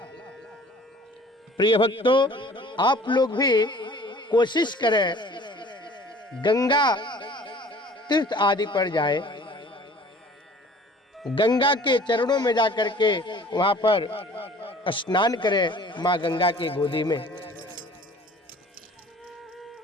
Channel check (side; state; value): both; normal; correlation 0.49